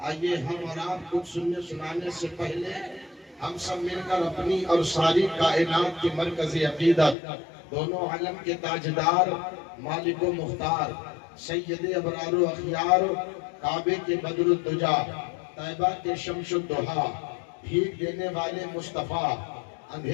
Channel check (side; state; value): right; drops out; at 7.2 s